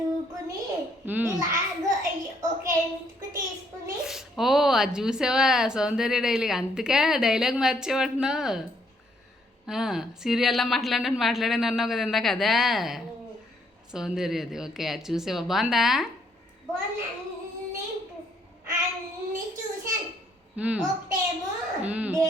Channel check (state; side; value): normal; both; correlation 0.69